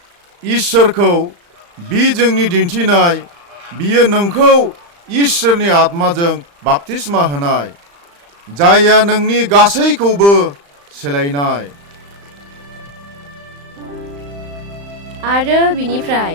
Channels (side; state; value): left; late; 35 ms